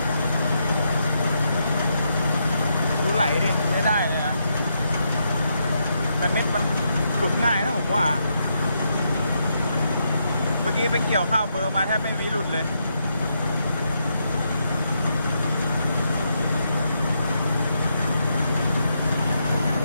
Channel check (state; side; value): inverted; both; correlation -0.80